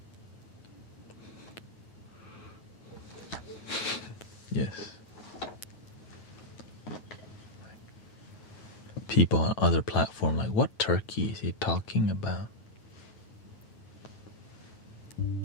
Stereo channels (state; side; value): late; right; 9.1 ms